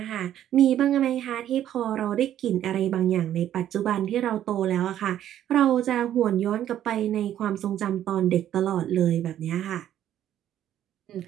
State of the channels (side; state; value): left; quieter; 11.3 dB